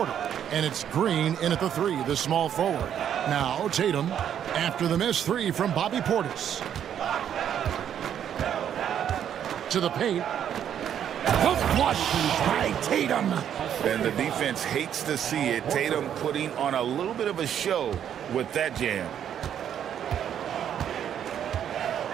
And it's Green in at the 3, the small forward. Now Tatum after the missed 3 from Bobby Portis. To the paint. The flush by Tatum. And the defense hates to see it. Tatum putting on a little bit of a show with that jam.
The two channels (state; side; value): quieter; left; 9.4 dB